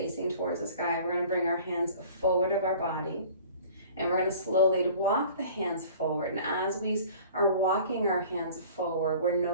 towards the sky. We're gonna bring our hands forward of our body. And we're gonna slowly walk the hands forward. And as we are walking our hands forward, we're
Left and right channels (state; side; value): inverted; both; correlation -0.46